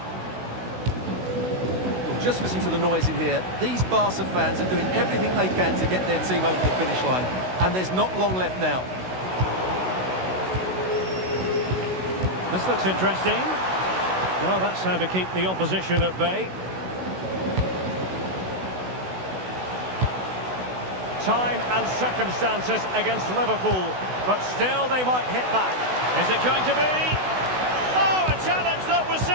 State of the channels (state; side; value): late; left; 16 ms